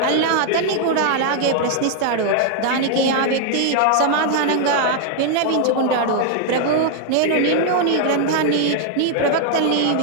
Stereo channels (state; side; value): different; both; correlation 0.00